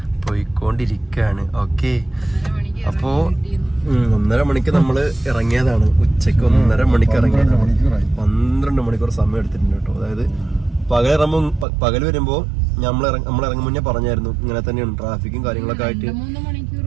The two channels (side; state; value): left; drops out; at 11.7 s